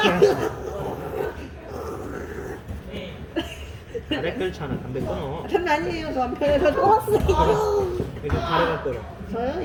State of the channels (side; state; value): both; identical; correlation 1.00